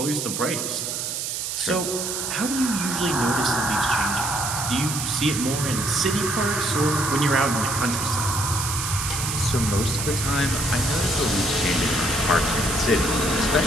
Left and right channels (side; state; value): right; noise; hiss, 3 dB below the sound